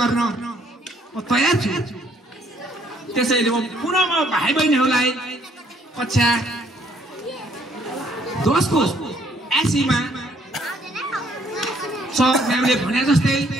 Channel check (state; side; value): normal; both; correlation 0.65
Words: म तयार छु त्यसैले म पुनः म भाइ बहिनीहरुलाई कक्षा 10 को एसीमा सर म्यामले भने जस्तै